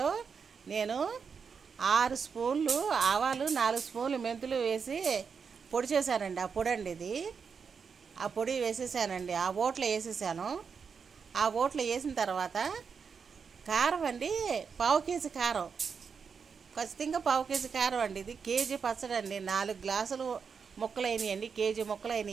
నేను 6 స్పూన్లు ఆవాలు, 4 స్పూన్లు మెంతులు వేసి పొడి చేశానండి. ఆ పొడి అండి ఇది. ఆ పొడి వేసేసానండి. ఆ ఓట్లో వేసేసాను. ఆ ఓట్లో వేసిన తర్వాత కారం అండి, 1/2 కేజీ కారం, ఖచ్చితంగా 1/2 కేజీ కారం అండి. ఇది కేజీ పచ్చడి అండి. 4 గ్లాసులు ముక్కలు అయినాయండి. కేజీ ముక్కలు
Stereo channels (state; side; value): quieter; left; 6.0 dB